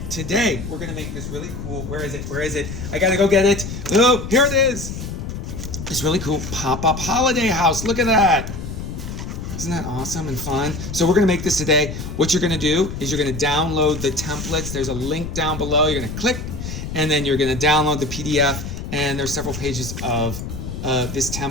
today we're going to make this really cool. Where is it? I got to go get it. Oh, here it is. This really cool pop-up holiday house. Look at that. Isn't that awesome and fun? So we're gonna make this today. What you're gonna do is you're gonna download the templates. There's a link down below. You're gonna click, and then you're gonna download the PDF, and there's several pages of this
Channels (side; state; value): left; noise; rumble, 7 dB below the sound